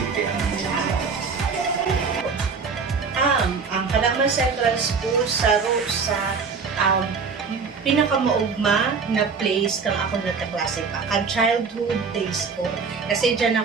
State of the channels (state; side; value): quieter; left; 5.2 dB